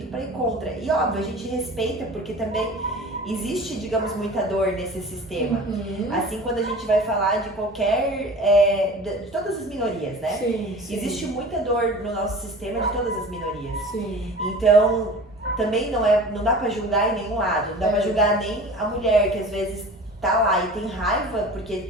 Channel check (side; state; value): both; normal; correlation 0.39